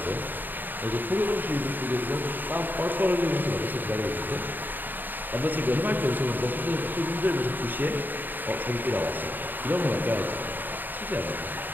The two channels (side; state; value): left; late; 0.090 ms